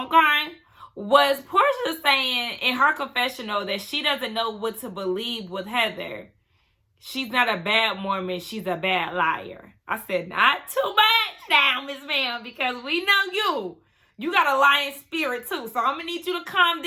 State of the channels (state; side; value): identical; both; correlation 1.00